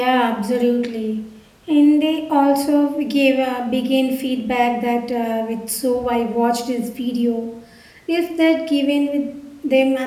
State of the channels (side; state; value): both; identical; correlation 1.00